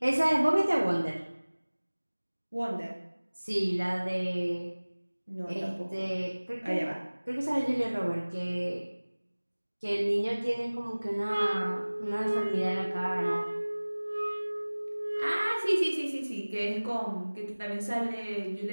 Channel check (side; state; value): both; inverted; correlation -1.00